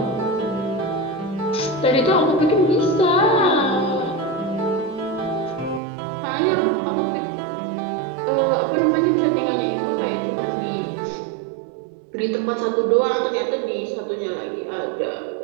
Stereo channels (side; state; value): left; drops out; at 5.8 s